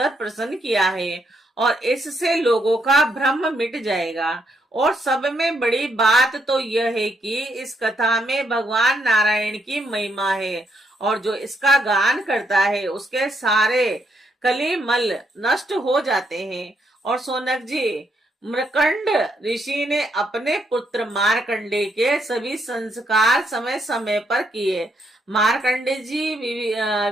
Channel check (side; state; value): both; normal; correlation 0.76